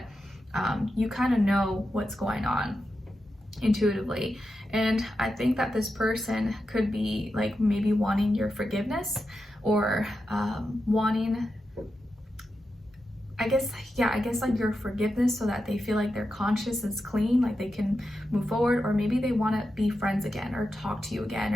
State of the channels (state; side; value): normal; both; correlation 0.89